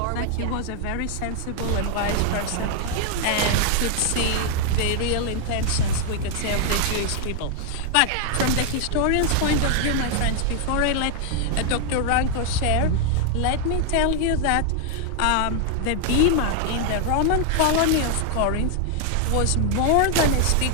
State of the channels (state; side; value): different; both; correlation 0.00